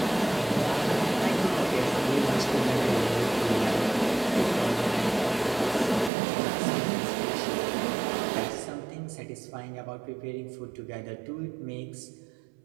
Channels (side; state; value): left; drops out; at 6.1 s